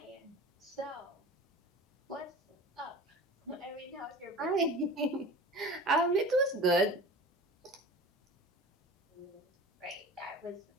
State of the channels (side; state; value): both; normal; correlation 0.36